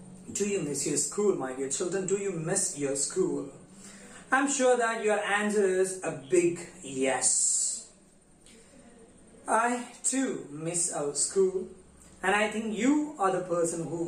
Do you miss your school, my dear children? Do you miss your school? I'm sure that your answer is a big yes. I too miss our school, and I think you are the person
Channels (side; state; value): both; identical; correlation 1.00